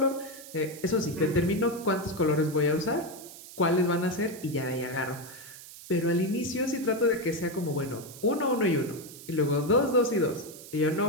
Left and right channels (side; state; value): right; noise; hiss, 16 dB below the sound